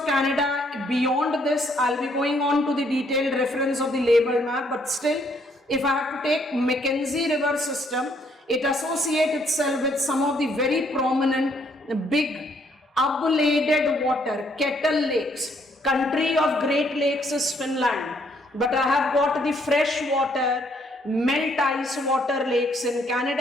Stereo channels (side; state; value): both; normal; correlation 0.69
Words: Canada beyond this, I'll be going on to the detailed reference of the label map, but still, if I have to take Mackenzie River system, it associates itself with some of the very prominent big ablated water, kettle lakes. Country of Great Lakes is Finland, but I have got the fresh water, melt ice water lakes in